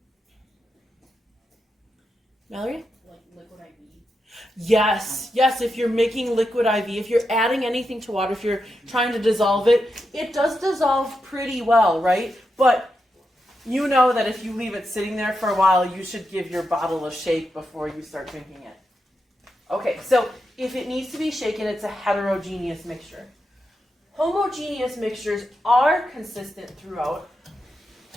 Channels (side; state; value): both; normal; correlation 0.86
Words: Mallory? Like liquid IV. Yes, if you're making liquid IV, if you're adding anything to water, if you're trying to dissolve it, it does dissolve pretty well, right? But you know that if you leave it sitting there for a while, you should give your bottle a shake before you start drinking it. Okay, so if it needs to be shaken, it's a heterogeneous mixture. Homogeneous mixtures are consistent throughout.